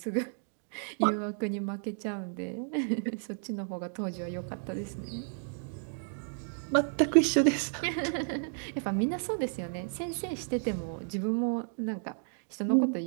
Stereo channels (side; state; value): left; silent; digital silence